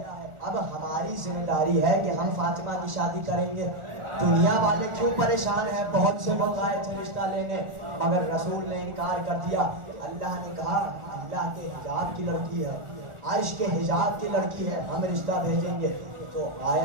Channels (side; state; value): left; late; 1.4 ms